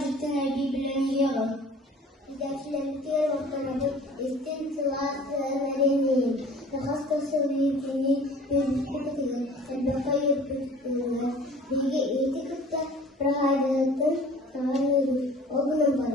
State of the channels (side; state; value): both; normal; correlation 0.47